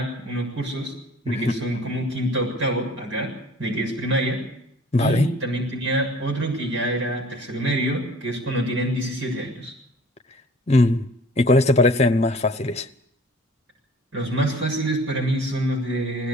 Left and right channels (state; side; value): normal; both; correlation 0.50